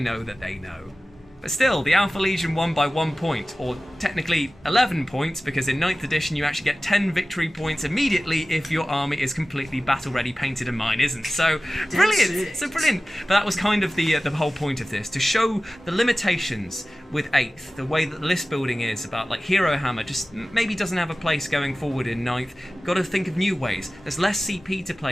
that they know. But still, the Alpha Legion won by 1 point, or technically 11 points, because in 9th edition you actually get 10 victory points immediately if your army is completely battle-ready, painted, and mine isn't. So, brilliant! So brilliant! But that was kind of the whole point of this, to show the limitations with 8th, the way that the list building is about, like, Hero Hammer just maybe doesn't have a place going forward in 9th. Got to think of new ways. There's less CP to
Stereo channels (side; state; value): both; normal; correlation 0.96